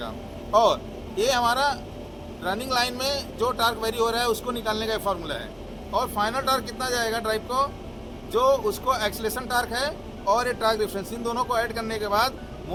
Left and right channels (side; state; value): both; identical; correlation 1.00